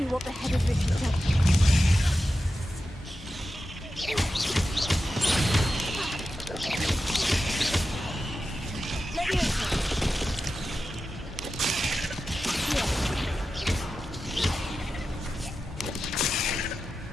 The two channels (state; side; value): normal; both; correlation 0.92